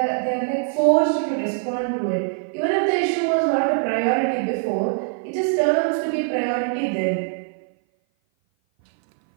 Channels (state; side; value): silent; left; 57 dB below the other